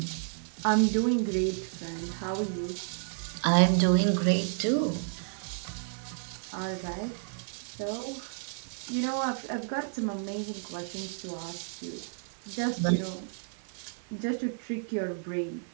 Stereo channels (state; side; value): silent; left; digital silence